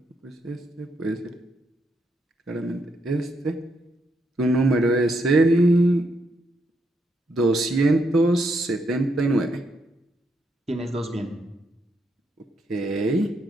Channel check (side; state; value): both; normal; correlation 0.78